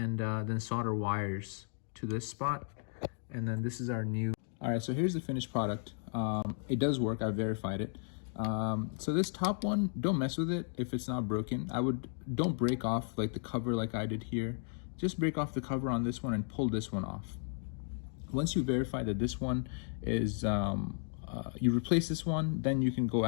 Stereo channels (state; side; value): silent; right; 55 dB below the other